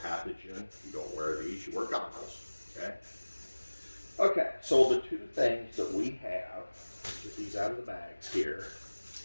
you don't wear these, you wear goggles. Okay. Okay, so the 2 things that we have, get these out of the bags here.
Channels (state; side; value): inverted; both; correlation -1.00